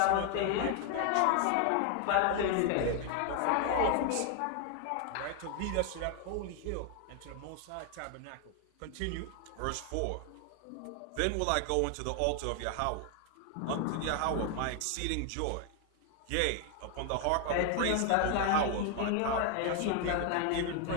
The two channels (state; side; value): different; both; correlation 0.00